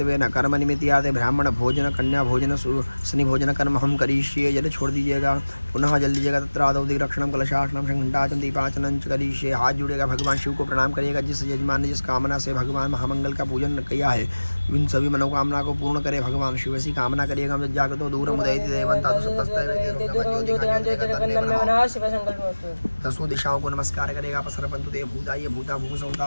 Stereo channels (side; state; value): both; inverted; correlation -1.00